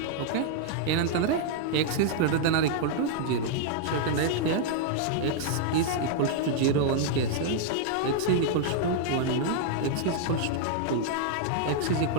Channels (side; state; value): both; different; correlation -0.01